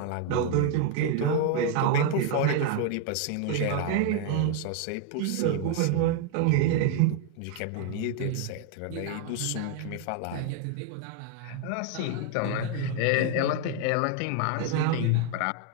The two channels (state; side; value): different; both; correlation 0.01